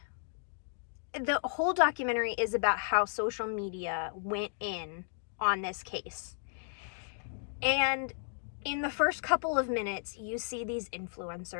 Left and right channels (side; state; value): right; silent; digital silence